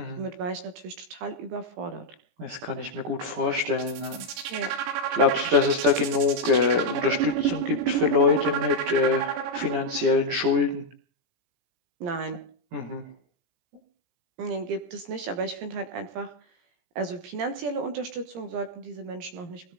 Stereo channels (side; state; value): left; late; 17 ms